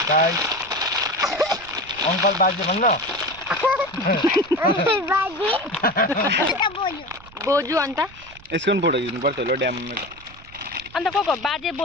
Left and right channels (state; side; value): noise; right; rumble, 21 dB below the sound